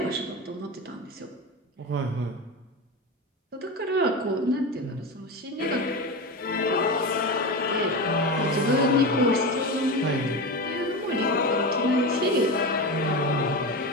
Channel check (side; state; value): both; normal; correlation 0.21